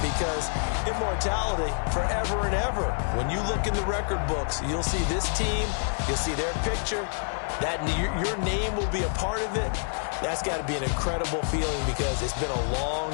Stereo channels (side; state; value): right; silent; digital silence